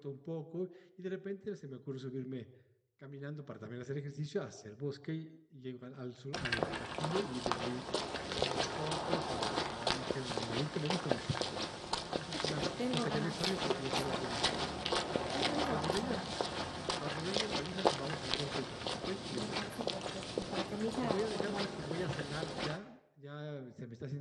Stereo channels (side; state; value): both; identical; correlation 1.00